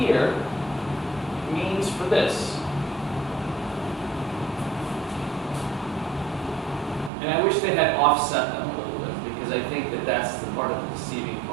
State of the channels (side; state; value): left; drops out; at 7.1 s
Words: means for this? And I wish they had offset them a little bit, because I think that that's the part of the deceiving